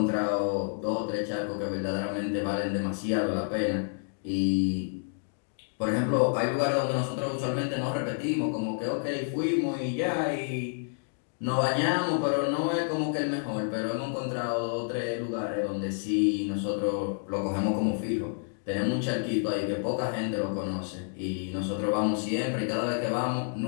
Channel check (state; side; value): silent; right; digital silence